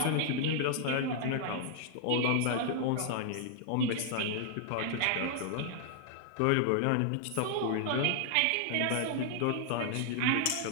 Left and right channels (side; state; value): both; different; correlation 0.00